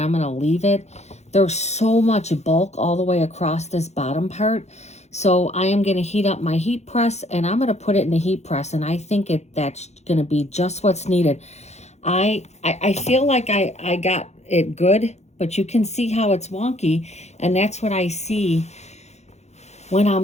going to leave it. There's so much bulk all the way across this bottom part. So I am going to heat up my heat press, and I'm going to put it in the heat press, and I think that's going to be just what's needed. I feel like I got it good, but you can see how it's wonky, and that's what I see when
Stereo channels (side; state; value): right; late; 0.32 ms